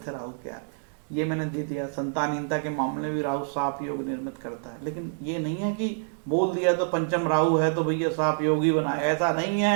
है राहु के यार, ये मैंने दे दिया। संतानहीनता के मामले में भी राहु साप योग निर्मित करता है, लेकिन ये नहीं है कि बोल दिया तो पंचम राहु है तो भैया साप योग ही बनाए, ऐसा नहीं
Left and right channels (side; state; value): left; silent; 59 dB below the other